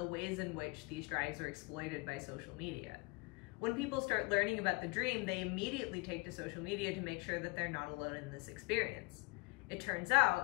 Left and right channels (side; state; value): right; quieter; 27.7 dB